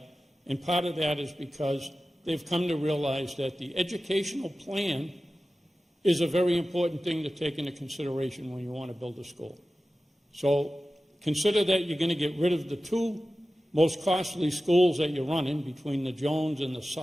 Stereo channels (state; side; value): normal; both; correlation 0.95